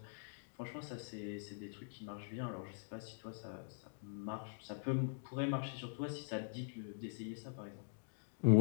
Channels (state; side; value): silent; right; digital silence